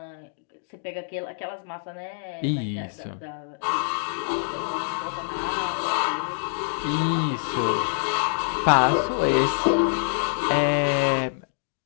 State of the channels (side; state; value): right; silent; digital silence